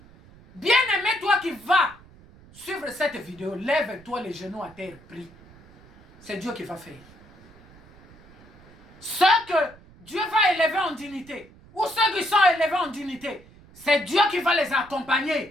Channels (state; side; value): noise; right; rumble, 24 dB below the sound